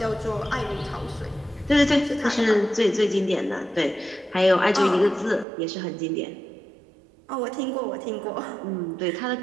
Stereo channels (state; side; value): drops out; left; at 5.5 s